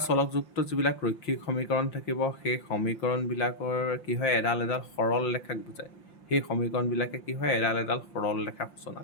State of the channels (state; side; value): late; right; 5.8 ms